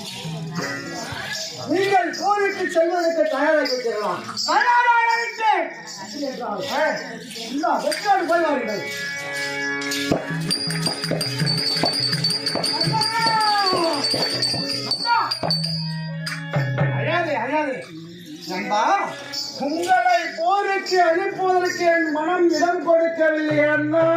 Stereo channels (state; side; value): identical; both; correlation 1.00